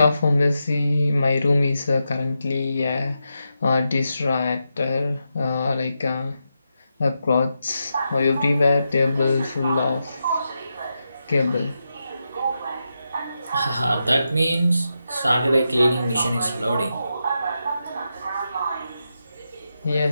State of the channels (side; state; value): both; inverted; correlation -0.87